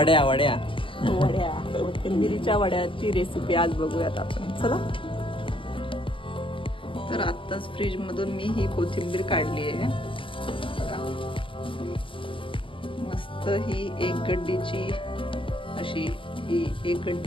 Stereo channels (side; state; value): right; late; 0.25 ms